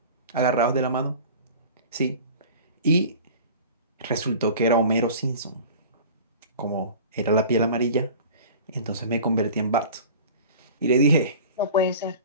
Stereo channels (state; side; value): inverted; both; correlation -0.40